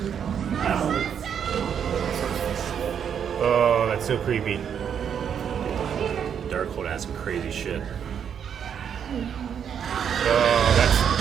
Oh, that's so creepy. Darkhold has some crazy shit. Oh, that's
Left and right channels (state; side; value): quieter; left; 8.1 dB